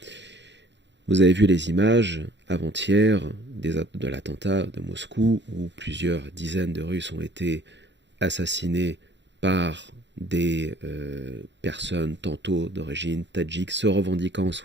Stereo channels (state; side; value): late; left; 0.52 ms